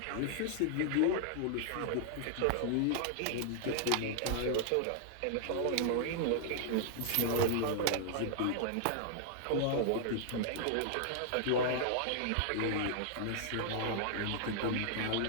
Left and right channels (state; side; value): different; both; correlation -0.01